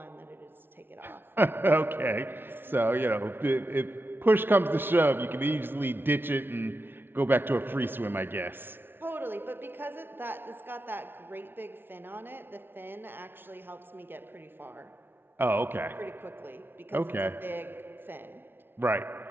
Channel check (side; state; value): left; late; 0.10 ms